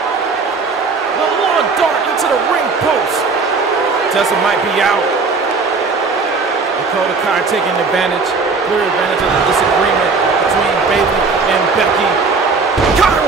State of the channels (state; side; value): quieter; left; 4.4 dB